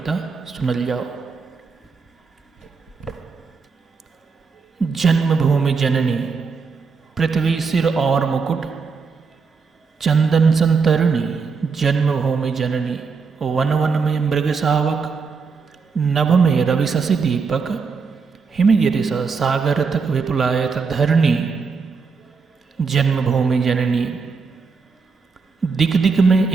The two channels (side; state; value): left; quieter; 5.1 dB